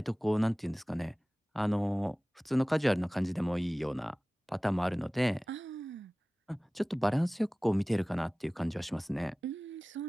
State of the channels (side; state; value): both; normal; correlation 0.98